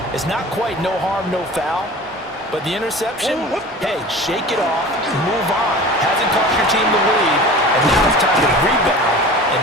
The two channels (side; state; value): both; normal; correlation 0.38